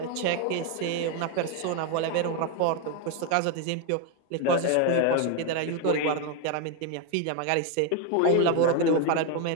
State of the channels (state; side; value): different; both; correlation 0.01